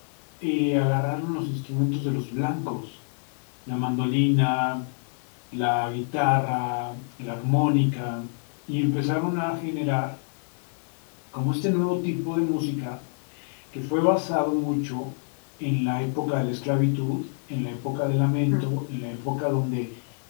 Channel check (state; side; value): silent; right; digital silence